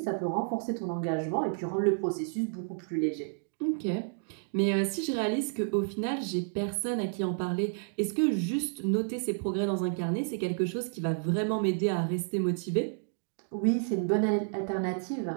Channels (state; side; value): silent; left; digital silence